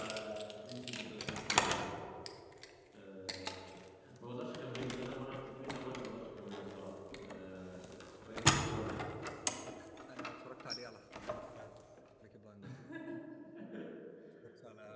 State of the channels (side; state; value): both; identical; correlation 1.00